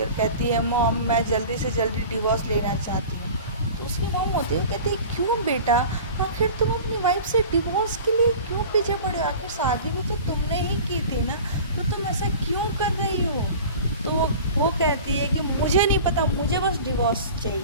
और कहती है मॉम मैं जल्दी से जल्दी डिवोर्स लेना चाहती हूँ। तो उसकी मॉम होती है वो कहती है क्यों बेटा, आखिर तुम अपनी वाइफ से डिवोर्स के लिए क्यों पीछे पड़े हो, आखिर शादी भी तो तुमने ही की थी ना, तो तुम ऐसा क्यों कर रही हो। तो वो कहती है कि मुझे नहीं पता, मुझे बस डिवोर्स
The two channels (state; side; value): inverted; both; correlation -0.39